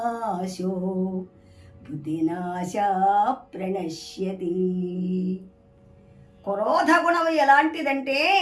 బుద్ధినాశ ప్రణశ్యతి. క్రోధ గుణం ఎలాంటిదంటే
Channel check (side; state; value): both; identical; correlation 1.00